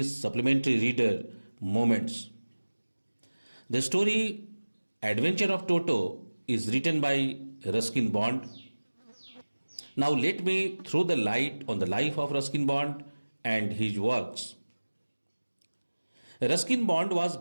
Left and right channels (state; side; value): inverted; both; correlation -1.00